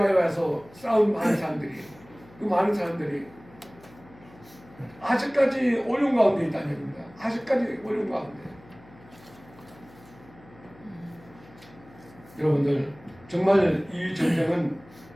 와서 싸운 많은 사람들이 그 많은 사람들이 아직까지 어려운 가운데 있다는 얘기입니다. 아직까지 어려운 가운데. 여러분들 정말 이 전쟁은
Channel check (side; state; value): left; noise; hum, 24 dB below the sound